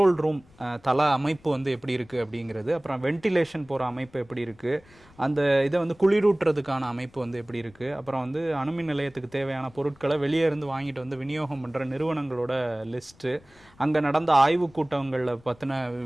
ரூம் தள அமைப்பு வந்து எப்படி இருக்குது அப்படிங்கிறது, அப்புறம் வென்டிலேஷன் போகிற அமைப்பு எப்படி இருக்குது, அந்த இதை வந்து குளிரூட்டுறதுக்கான அமைப்பு வந்து எப்படி இருக்குது, அப்புறம் வந்து அணுமின் நிலையத்துக்கு தேவையான பொருட்களை வெளியே இருந்து வாங்கிட்டு வந்து விநியோகம் பண்ணுற நிறுவனங்களோட லிஸ்ட்டு, அங்கே நடந்த ஆய்வு கூட்டங்களில் பற்றின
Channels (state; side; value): noise; left; rumble, 27 dB below the sound